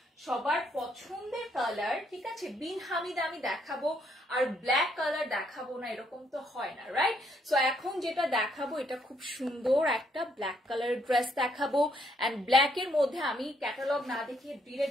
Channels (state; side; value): normal; both; correlation 0.72